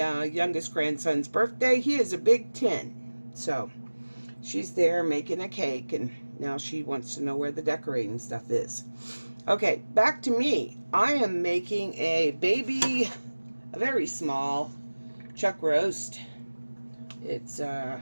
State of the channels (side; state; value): both; inverted; correlation -1.00